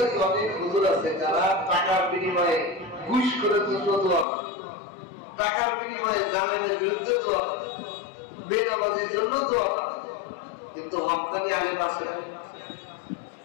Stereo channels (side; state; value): right; drops out; at 4.2 s